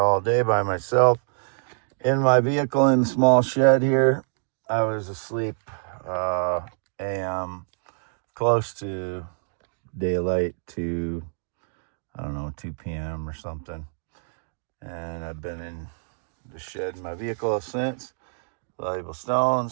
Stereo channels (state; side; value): silent; left; digital silence